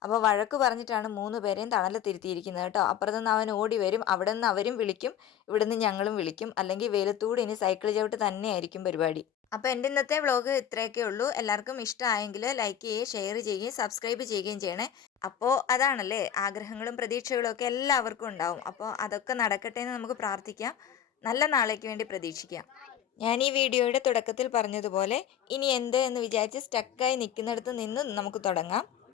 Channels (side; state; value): right; quieter; 9.6 dB